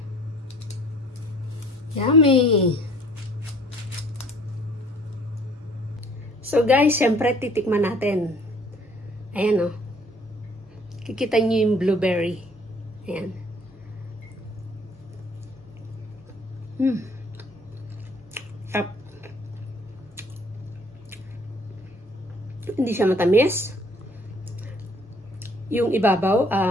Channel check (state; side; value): normal; both; correlation 0.57